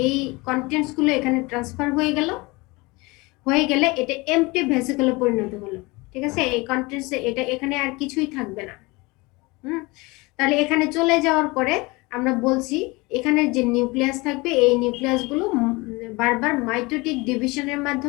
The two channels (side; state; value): right; quieter; 24.3 dB